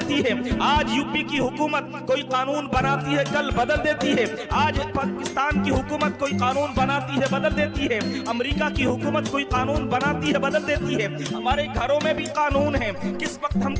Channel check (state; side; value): identical; both; correlation 1.00